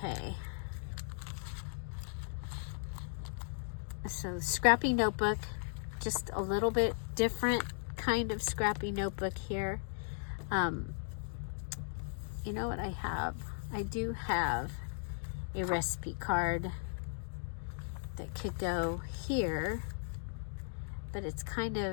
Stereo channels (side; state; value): right; silent; digital silence